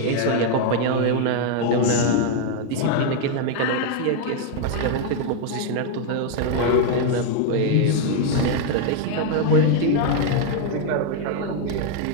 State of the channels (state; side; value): different; both; correlation 0.00